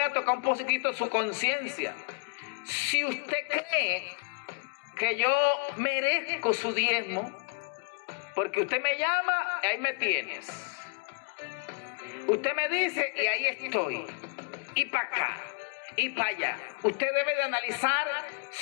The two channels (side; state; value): right; quieter; 34.6 dB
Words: a tocar un poquito su conciencia. Si usted cree que yo merezco su diezmo, porque usted me llama, ahí me tienes. Usted me dice y ahí estoy. Y para acá. Y para allá. Usted debe de analizar